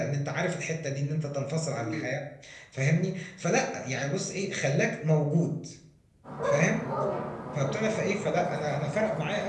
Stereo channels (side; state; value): both; identical; correlation 1.00